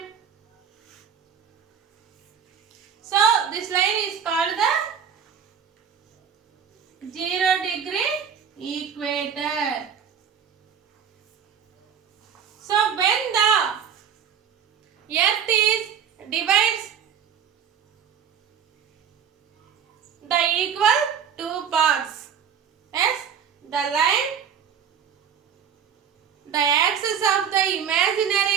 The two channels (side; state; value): left; quieter; 7.9 dB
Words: so this line is called the 0-degree equator. So when the Earth is divides the equal two parts. Yes, the line, the axis of the